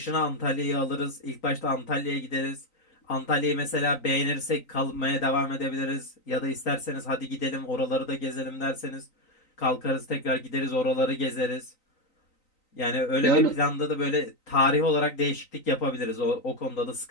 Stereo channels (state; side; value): late; right; 3.9 ms